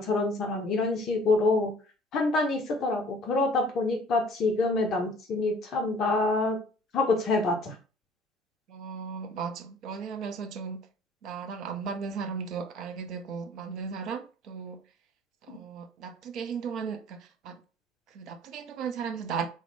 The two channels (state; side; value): normal; both; correlation 0.53